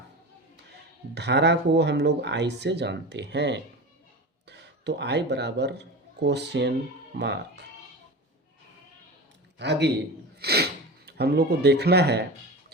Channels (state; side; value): normal; both; correlation 0.29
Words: धारा को हम लोग I से जानते हैं। तो I बराबर क्वेश्चन मार्क। आगे हम लोग को देखना है